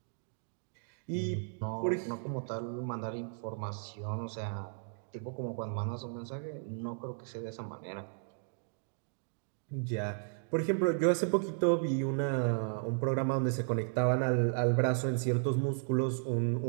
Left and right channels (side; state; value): left; silent; digital silence